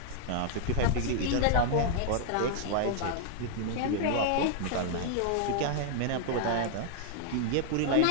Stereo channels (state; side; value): different; both; correlation 0.00